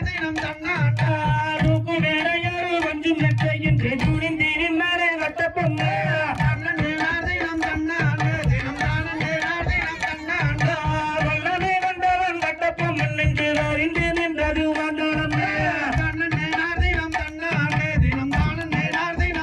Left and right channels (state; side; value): identical; both; correlation 1.00